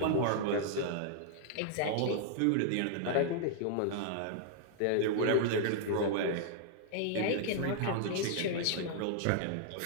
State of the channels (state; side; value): different; both; correlation -0.01